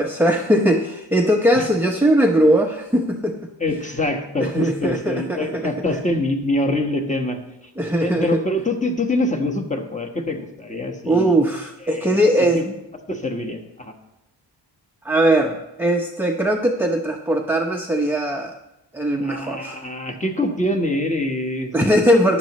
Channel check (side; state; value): both; normal; correlation 0.63